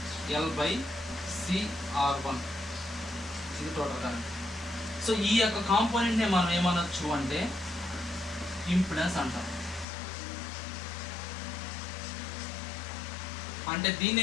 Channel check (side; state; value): right; drops out; at 9.9 s